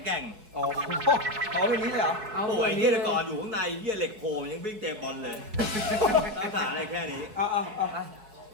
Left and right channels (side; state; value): left; late; 4.6 ms